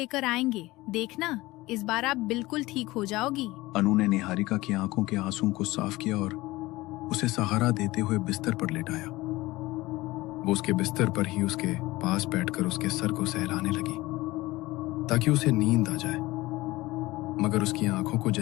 आएंगे, देखना इस बार आप बिल्कुल ठीक हो जाओगी। अनु ने निहारिका की आंखों के आंसुओं को साफ किया और उसे सहारा देते हुए बिस्तर पर लेटाया। वो उसके बिस्तर पर ही उसके पास बैठकर उसके सर को सहलाने लगी ताकि उसे नींद आ जाए, मगर उसकी आंखों को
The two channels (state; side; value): quieter; right; 19.6 dB